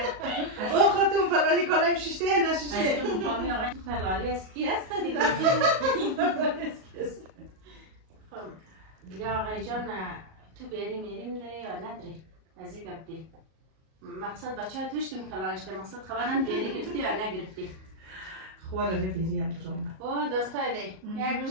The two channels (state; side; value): late; left; 38 ms